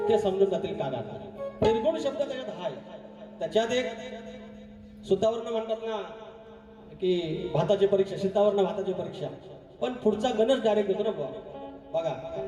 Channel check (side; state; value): both; identical; correlation 1.00